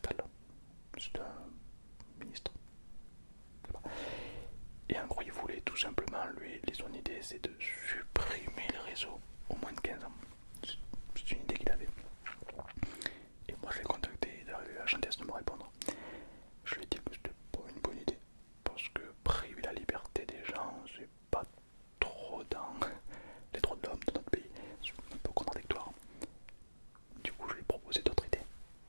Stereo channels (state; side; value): inverted; both; correlation -1.00